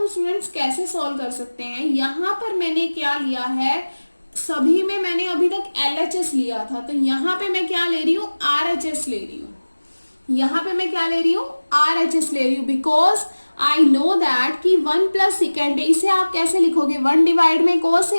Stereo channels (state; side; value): inverted; both; correlation -1.00